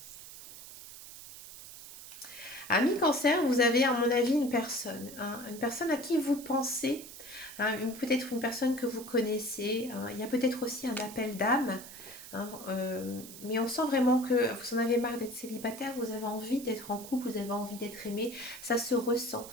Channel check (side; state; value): right; noise; hiss, 14 dB below the sound